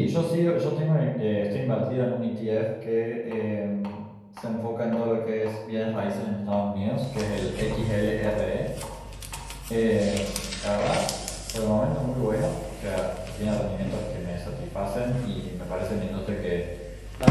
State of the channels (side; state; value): both; identical; correlation 1.00